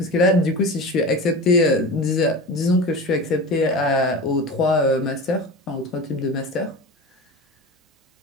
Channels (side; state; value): both; normal; correlation 0.30